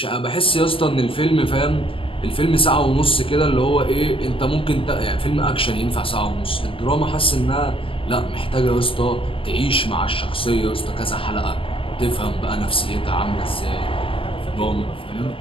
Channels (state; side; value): late; right; 0.26 ms